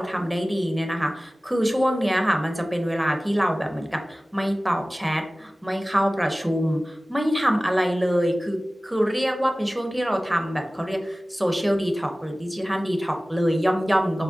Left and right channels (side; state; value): both; normal; correlation 0.97